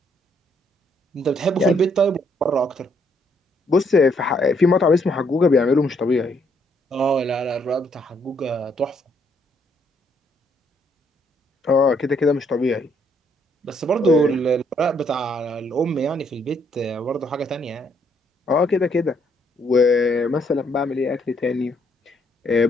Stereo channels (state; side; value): normal; both; correlation 0.70